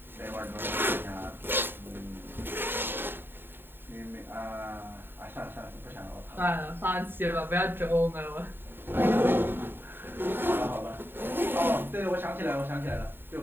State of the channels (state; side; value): late; left; 0.098 ms